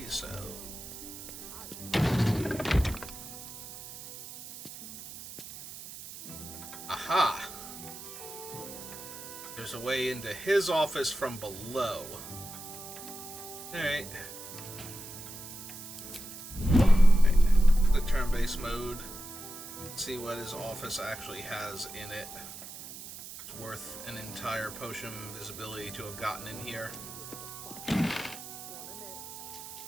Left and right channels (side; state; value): right; noise; hiss, 12 dB below the sound